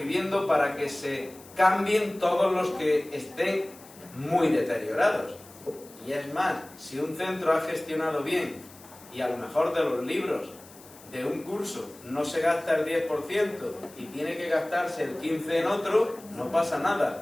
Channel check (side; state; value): left; noise; hiss, 21 dB below the sound